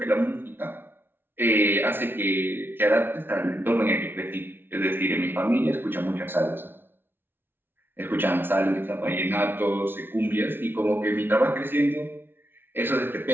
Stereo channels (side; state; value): left; late; 0.10 ms